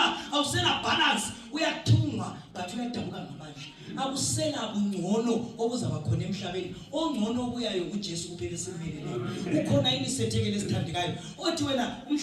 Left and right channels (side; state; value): both; identical; correlation 1.00